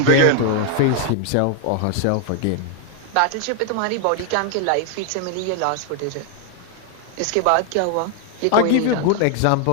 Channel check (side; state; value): both; different; correlation 0.00